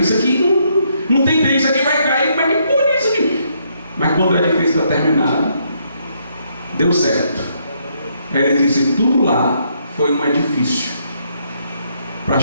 aqui não tem bem, isso aqui vai cair, como é que pode isso aqui? Mas quando o edifício está terminado, deu certo. Aí ele disse: tudo lá foi um edifício para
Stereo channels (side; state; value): both; inverted; correlation -0.73